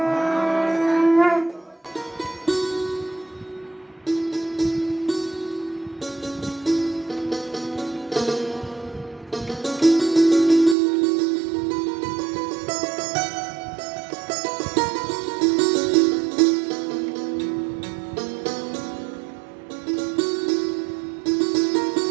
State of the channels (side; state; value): left; drops out; at 10.8 s